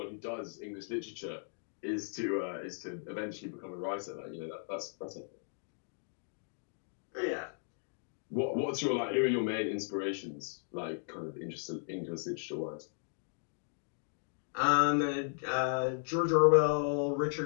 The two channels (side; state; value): right; silent; digital silence